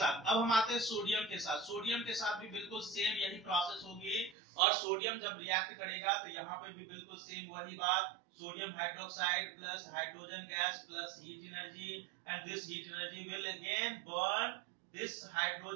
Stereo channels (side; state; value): left; drops out; at 4.4 s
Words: अब हम आते हैं सोडियम के साथ। सोडियम के साथ भी बिल्कुल सेम यही प्रोसेस होगी, और सोडियम जब रिएक्ट करेगा तो यहाँ पे भी बिल्कुल सेम वही बात, sodium hydroxide plus hydrogen gas plus heat energy, and this heat energy will again burn this